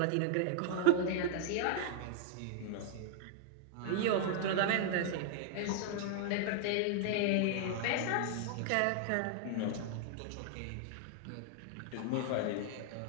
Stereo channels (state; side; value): different; both; correlation 0.00